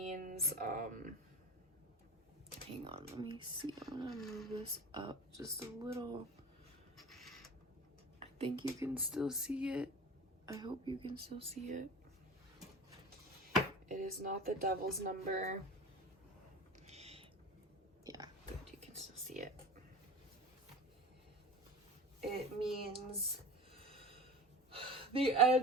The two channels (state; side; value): normal; both; correlation 0.34